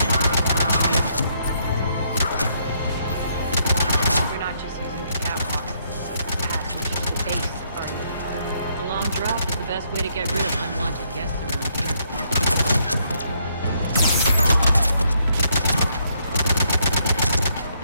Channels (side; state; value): both; inverted; correlation -0.73